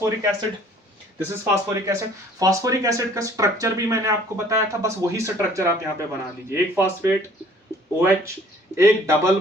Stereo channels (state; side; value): normal; both; correlation 0.54